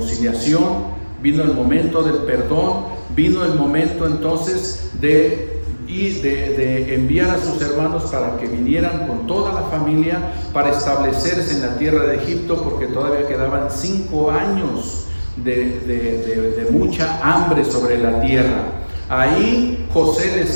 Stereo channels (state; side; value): inverted; both; correlation -1.00